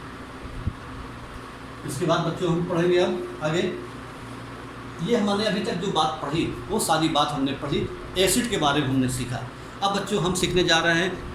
इसके बाद बच्चों हम पढ़ेंगे अब आगे। ये हमने अभी तक जो बात पढ़ी वो सारी बात हमने पढ़ी एसिड के बारे में हमने सीखा। अब बच्चों हम सीखने जा रहे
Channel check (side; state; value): both; identical; correlation 1.00